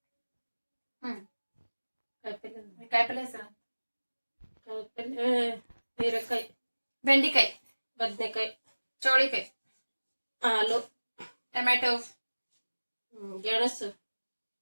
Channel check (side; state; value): both; inverted; correlation -1.00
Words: ಕಾಯಿಪಲ್ಯ ಹೆಸರು: ಹೀರೆಕಾಯಿ, ಬೆಂಡಿಕಾಯಿ, ಬದನೆಕಾಯಿ, ಚೌಳಿಕಾಯಿ, ಆಲೂ, ಟೊಮ್ಯಾಟೊ, ಗೆಣಸು,